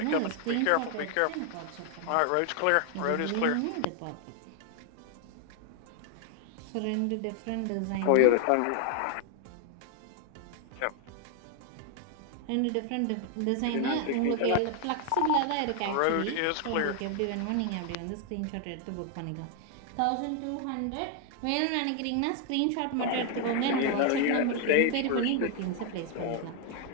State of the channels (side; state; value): both; different; correlation 0.00